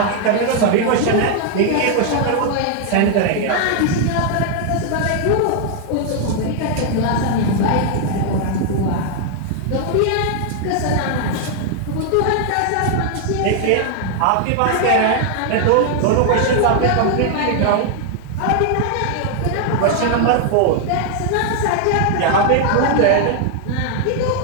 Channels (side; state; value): both; different; correlation 0.00